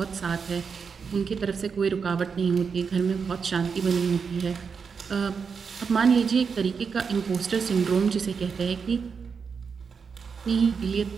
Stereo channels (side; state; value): left; quieter; 5.8 dB